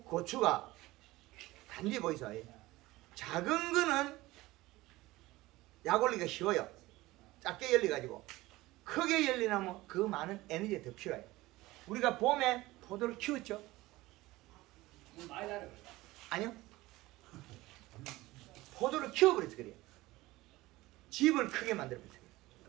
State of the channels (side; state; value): left; quieter; 18.9 dB